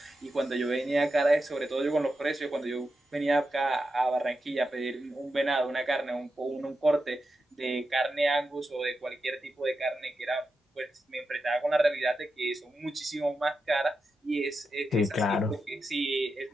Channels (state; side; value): normal; both; correlation 0.89